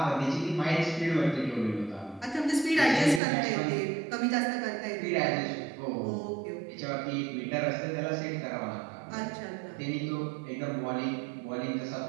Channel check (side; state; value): left; drops out; at 3.2 s